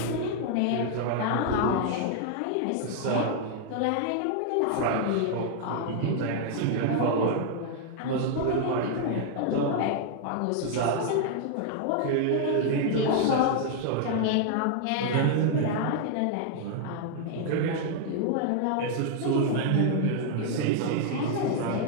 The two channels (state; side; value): different; both; correlation 0.00